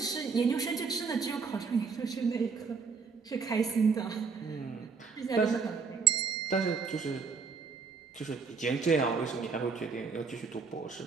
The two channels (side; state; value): left; quieter; 5.2 dB